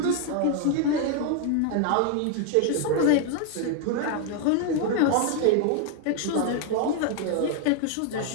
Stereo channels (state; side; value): different; both; correlation 0.00